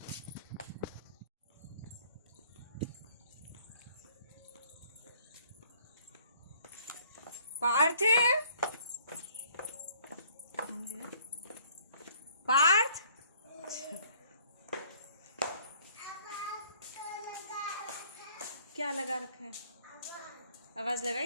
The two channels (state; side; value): inverted; both; correlation -0.60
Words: पार्थ, पार्थ, क्या लगा रखा है? आवाज